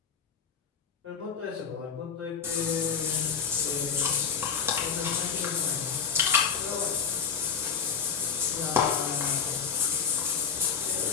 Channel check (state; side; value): quieter; right; 6.5 dB